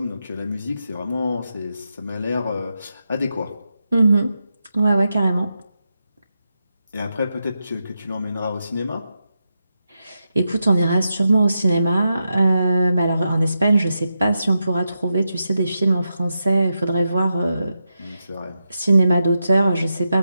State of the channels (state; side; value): inverted; both; correlation -0.88